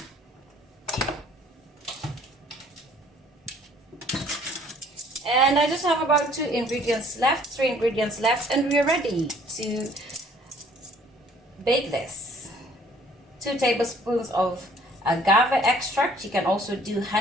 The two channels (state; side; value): normal; both; correlation 0.57